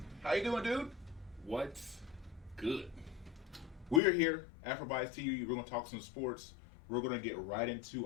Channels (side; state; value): right; drops out; at 4.0 s